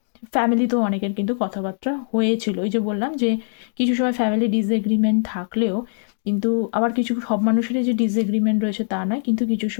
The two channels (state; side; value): silent; right; digital silence